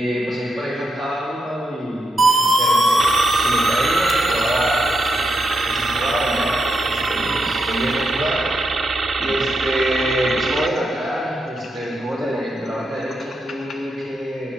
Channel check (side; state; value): both; normal; correlation 0.83